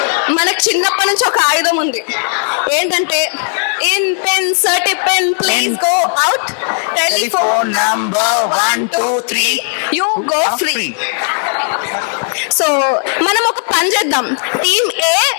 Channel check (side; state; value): right; silent; 59 dB below the other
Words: మనకు చిన్నప్పటి నుంచి ఒక ఆయుధం ఉంది. ఏంటంటే ఇన్ పెన్ సర్టి pen please go out, telephone number 1 2 3 you go free. So మనం ఒక పని చేద్దాం, team A